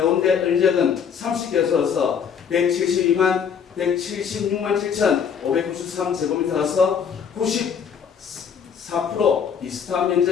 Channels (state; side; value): quieter; right; 7.1 dB